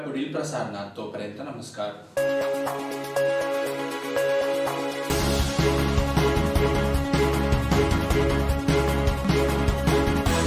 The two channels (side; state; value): both; identical; correlation 1.00